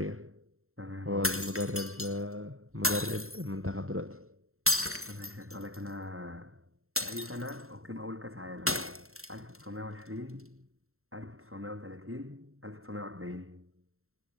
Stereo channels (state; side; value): late; left; 0.62 ms